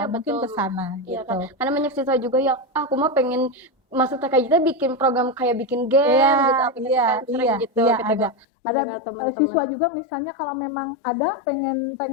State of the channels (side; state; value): right; drops out; at 8.5 s